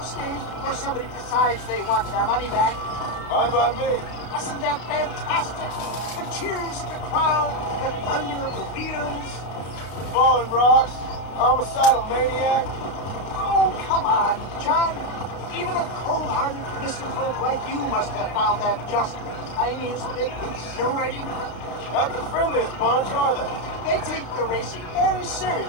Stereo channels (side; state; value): right; late; 32 ms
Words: stage before somebody decides they want their money back. Fine by me. Wasn't that fantastic? The cheers of the crowd, the thunder of the wheels. Falling rocks, homicidal maniac. Oh, come on, John. Even a cold-hearted misanthrope like you must have found that just the tiniest bit exhilarating. Not the friendliest bunch, are they? They take the racing very